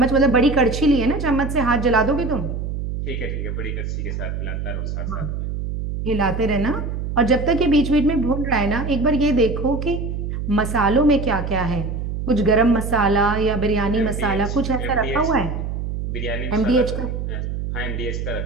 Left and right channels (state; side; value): noise; right; hum, 4 dB below the sound